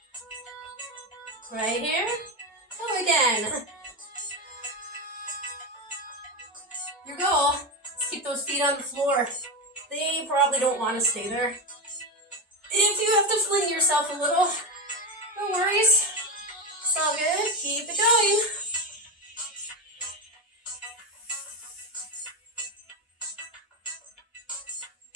Right here. Go again. Your goal is to keep those feet on the floor. They probably don't want to stay there. If you have to fling yourself a little, no worries. It's all good. Keep it going.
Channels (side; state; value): both; normal; correlation 0.16